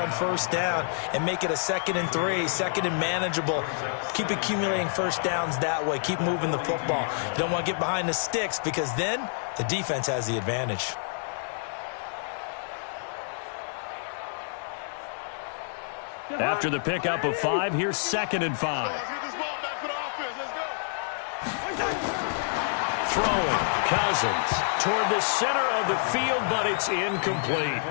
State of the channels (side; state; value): right; silent; 59 dB below the other